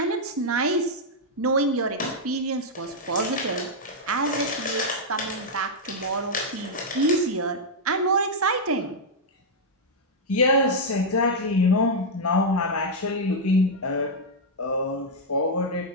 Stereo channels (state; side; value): normal; both; correlation -0.04